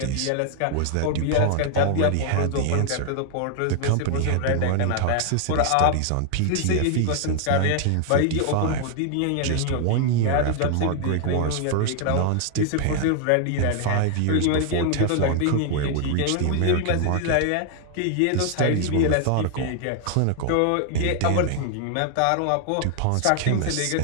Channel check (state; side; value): different; both; correlation 0.00